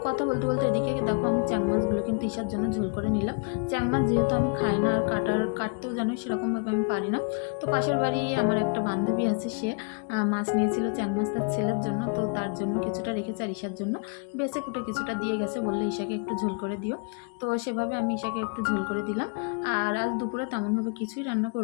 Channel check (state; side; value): quieter; right; 38.0 dB